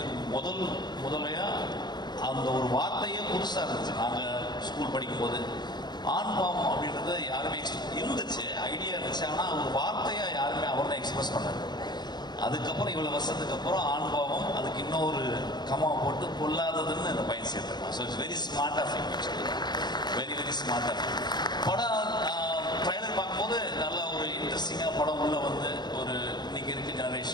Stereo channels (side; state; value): right; late; 0.21 ms